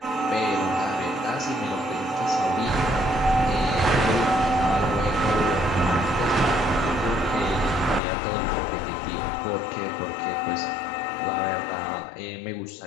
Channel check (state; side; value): drops out; right; at 8.0 s